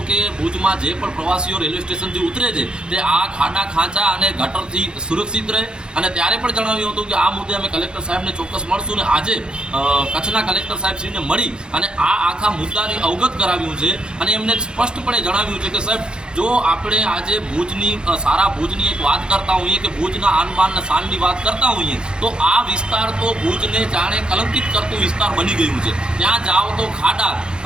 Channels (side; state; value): left; late; 0.049 ms